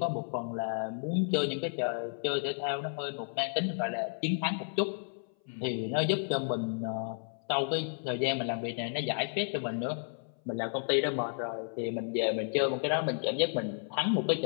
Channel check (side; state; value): right; silent; 56 dB below the other